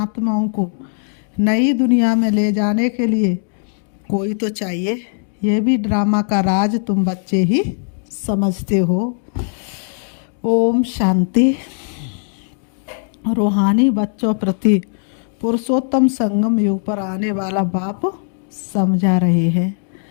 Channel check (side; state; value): right; silent; 62 dB below the other